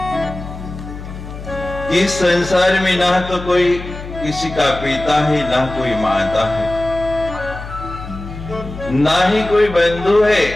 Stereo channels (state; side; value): noise; left; hum, 11 dB below the sound